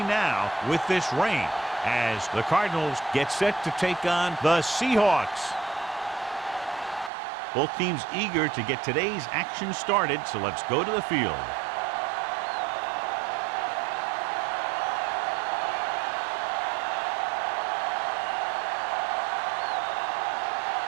now with this rain, as the Cardinals get set to take on the Seahawks. Both teams eager to get today's action started, so let's go to the field.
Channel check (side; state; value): left; drops out; at 7.1 s